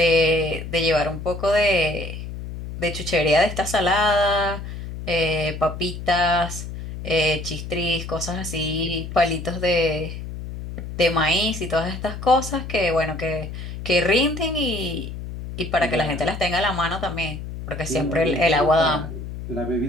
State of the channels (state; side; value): noise; left; hum, 9 dB below the sound